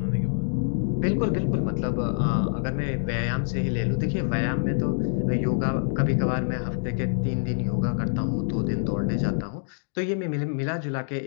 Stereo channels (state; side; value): silent; right; digital silence